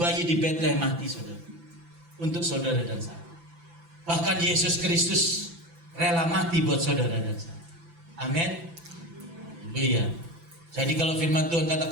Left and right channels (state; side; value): late; left; 5.9 ms